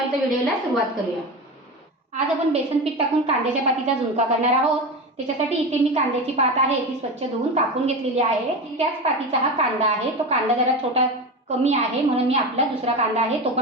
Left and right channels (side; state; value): both; normal; correlation 0.24